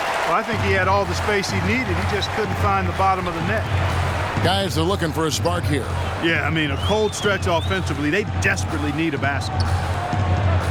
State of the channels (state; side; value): identical; both; correlation 1.00